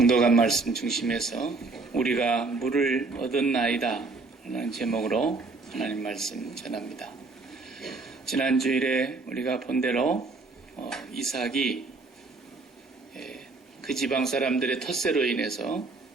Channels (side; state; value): left; quieter; 3.7 dB